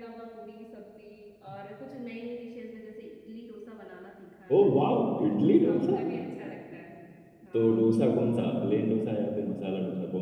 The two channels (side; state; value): both; identical; correlation 1.00